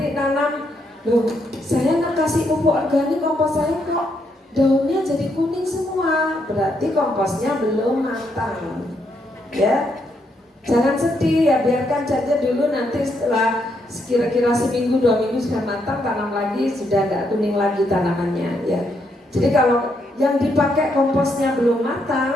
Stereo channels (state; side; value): normal; both; correlation 0.77